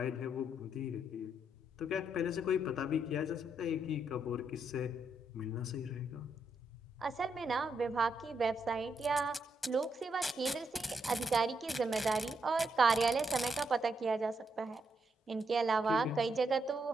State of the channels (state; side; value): normal; both; correlation 0.79